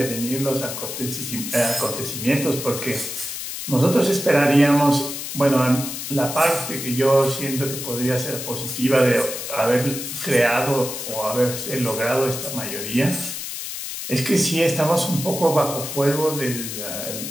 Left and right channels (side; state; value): left; noise; hiss, 7 dB below the sound